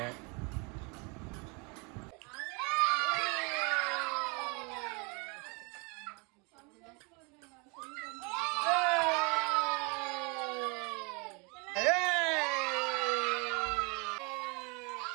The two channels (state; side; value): quieter; left; 31.1 dB